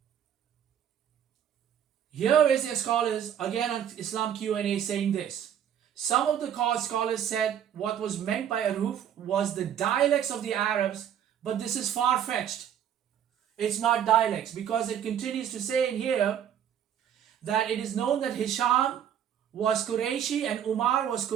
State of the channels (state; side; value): quieter; left; 9.4 dB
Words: Here is their scholars, again on Islam Q&A, saying this. Some of the scholars said what was meant by Ahruf was the dialects of the Arabs, but this is far-fetched. It's not dialects, because it continues to say in here that it is known that Hisham was Qurayshi and Umar was